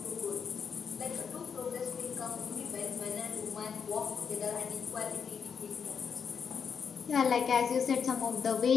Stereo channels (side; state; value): right; quieter; 6.6 dB